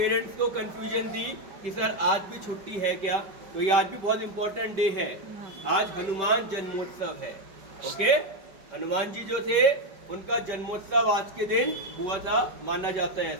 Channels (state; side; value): late; left; 5.2 ms